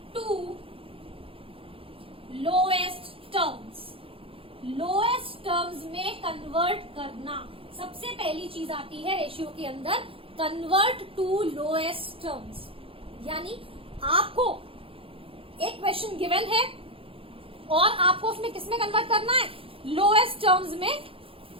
to lowest terms. Lowest terms में कन्वर्ट करना, सबसे पहली चीज आती है रेशियो के अंदर, कन्वर्ट टू लोएस्ट टर्म्स। यानी आपको एक क्वेश्चन गिवन है और आपको उसमें किसमें कन्वर्ट करना है, लोएस्ट टर्म्स में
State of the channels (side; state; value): left; late; 0.27 ms